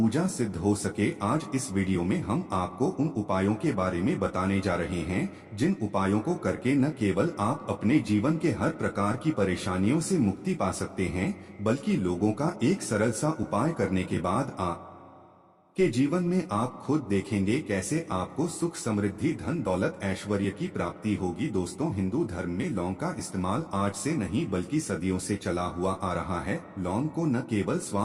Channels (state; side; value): identical; both; correlation 1.00